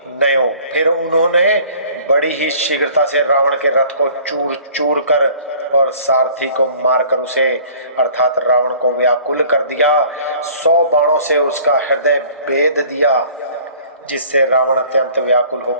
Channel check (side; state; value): both; inverted; correlation -0.51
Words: नयो। फिर उन्होंने बड़ी ही शीघ्रता से रावण के रथ को चूर चूर कर और सारथी को मारकर उसे अर्थात रावण को व्याकुल कर दिया। 100 बाणों से उसका हृदय भेद दिया, जिससे रावण अत्यंत व्याकुल